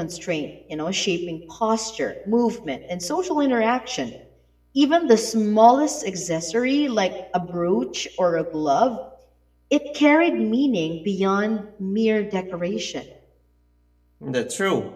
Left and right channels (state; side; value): identical; both; correlation 1.00